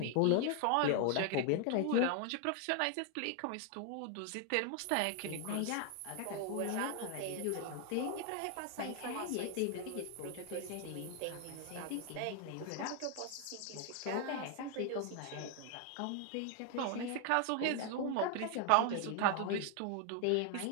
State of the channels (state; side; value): different; both; correlation 0.00